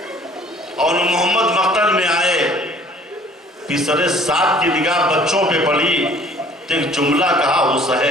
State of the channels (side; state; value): both; normal; correlation 0.53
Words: اون محمد مقتل میں آئے، پسرے ساتھ کی نگاہ بچوں پہ پڑی، ایک جملہ کہا